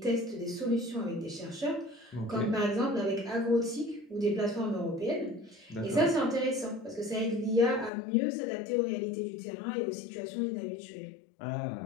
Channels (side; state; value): right; drops out; at 7.9 s